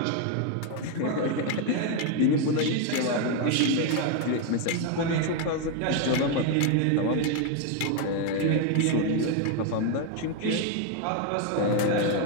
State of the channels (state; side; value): different; both; correlation 0.01